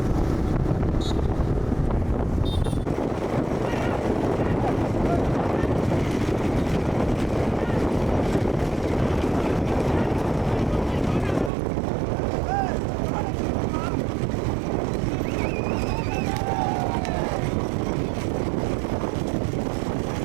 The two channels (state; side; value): drops out; left; at 11.5 s